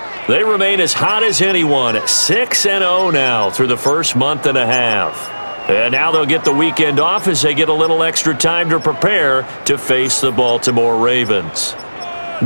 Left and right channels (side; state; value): both; inverted; correlation -1.00